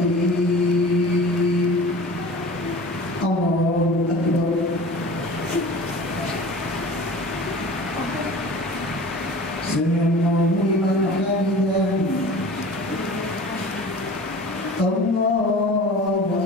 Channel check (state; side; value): normal; both; correlation 0.40